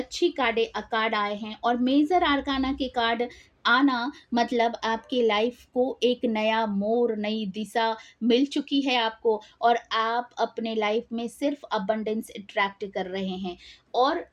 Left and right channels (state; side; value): identical; both; correlation 1.00